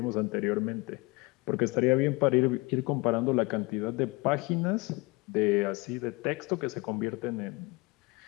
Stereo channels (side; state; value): right; quieter; 25.4 dB